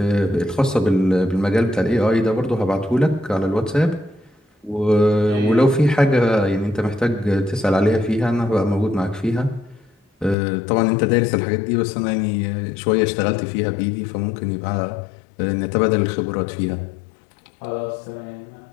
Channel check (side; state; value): right; drops out; at 10.4 s